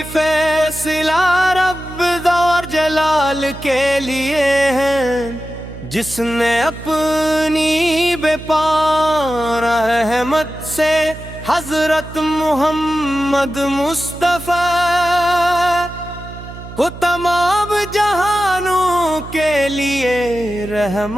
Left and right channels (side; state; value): right; noise; hum, 13 dB below the sound